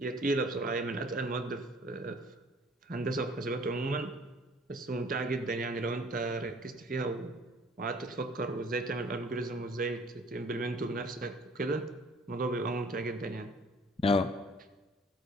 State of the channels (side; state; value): both; normal; correlation 0.53